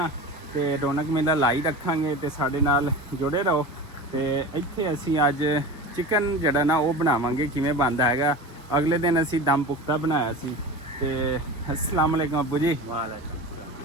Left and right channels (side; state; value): both; normal; correlation 0.31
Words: ਤੇ ਰੌਣਕ ਮੇਲਾ ਲਾਈ ਰੱਖਾਂਗੇ ਤੇ ਸਾਡੇ ਨਾਲ ਜੁੜੇ ਰਹੋ। ਤੇ ਇੱਥੇ ਅਸੀਂ ਅੱਜ ਚਿਕਨ ਜਿਹੜਾ ਨਾ ਉਹ ਬਣਾਵਾਂਗੇ, ਕਿਵੇਂ ਬਣਦਾ ਹੈਗਾ। ਅਗਲੇ ਦਿਨ ਅਸੀਂ ਦਮ ਪੁਖਤਾ ਬਣਾਇਆ ਸੀ। ਤੇ ਅਸਲਾਮ ਵਾਲੇਕਮ ਅੱਬੂ ਜੀ।